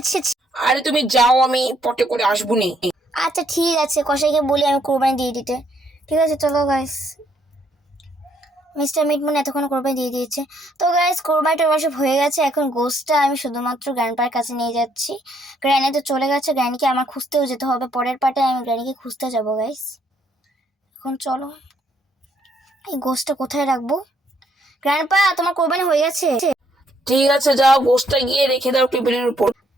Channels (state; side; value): normal; both; correlation 0.70